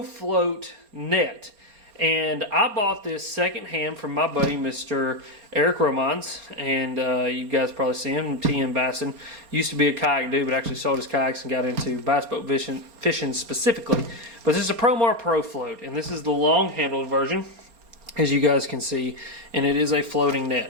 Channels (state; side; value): late; left; 4.3 ms